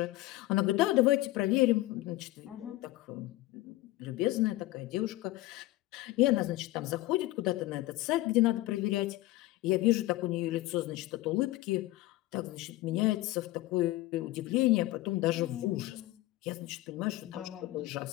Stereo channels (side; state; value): right; quieter; 18.0 dB